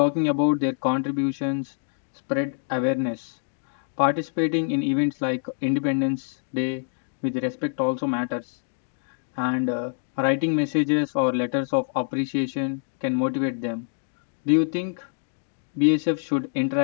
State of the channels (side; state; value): right; silent; digital silence